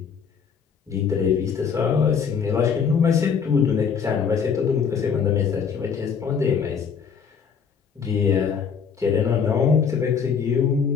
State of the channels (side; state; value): right; quieter; 6.5 dB